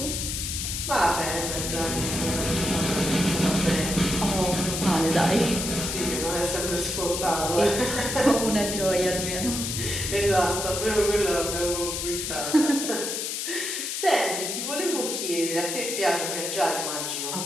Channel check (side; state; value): left; noise; hiss, 3 dB below the sound